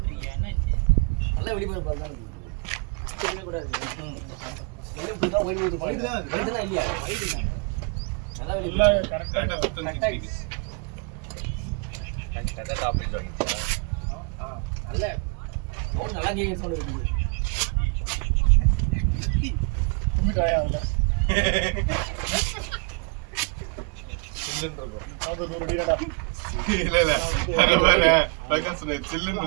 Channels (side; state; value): left; quieter; 32.6 dB